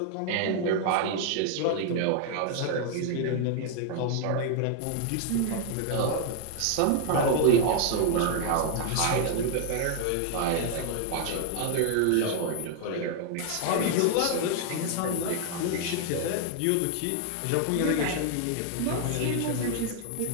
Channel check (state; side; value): different; both; correlation 0.00